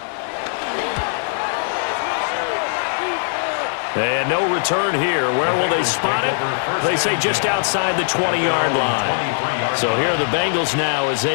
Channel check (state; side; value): silent; right; digital silence